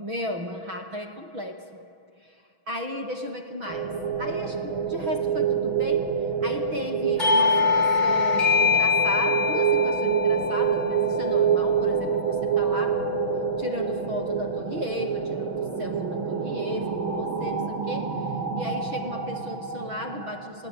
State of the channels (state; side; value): late; left; 6.2 ms